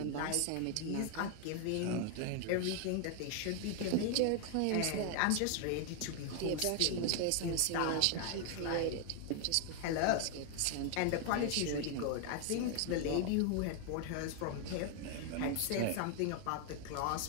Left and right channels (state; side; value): different; both; correlation 0.00